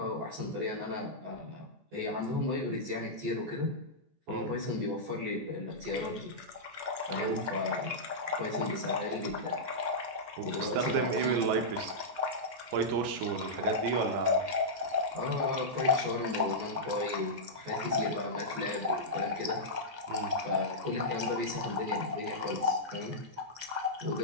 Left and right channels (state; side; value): late; left; 14 ms